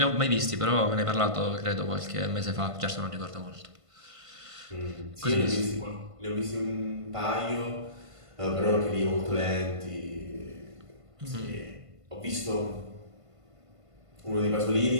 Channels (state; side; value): late; left; 1.5 ms